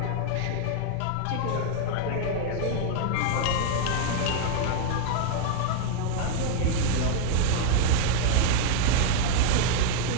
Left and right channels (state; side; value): different; both; correlation 0.00